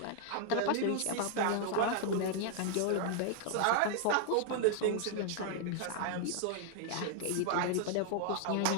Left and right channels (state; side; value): different; both; correlation 0.00